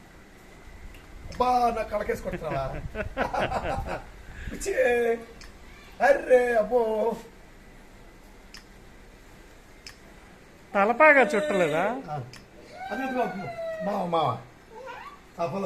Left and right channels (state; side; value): identical; both; correlation 1.00